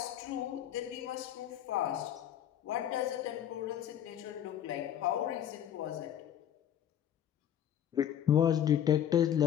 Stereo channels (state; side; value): quieter; right; 10.1 dB